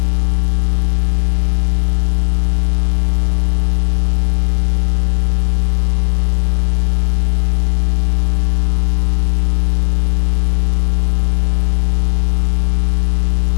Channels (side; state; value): right; silent; digital silence